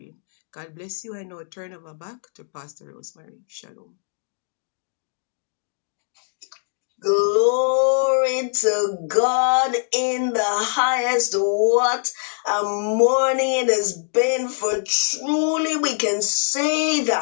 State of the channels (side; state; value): right; silent; digital silence